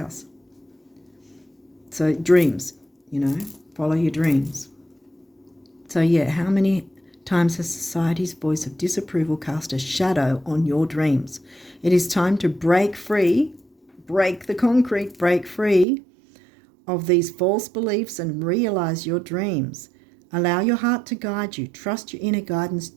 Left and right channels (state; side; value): drops out; left; at 15.9 s